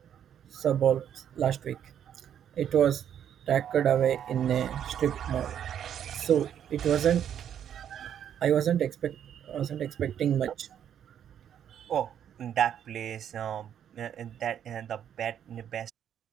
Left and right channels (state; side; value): quieter; left; 9.4 dB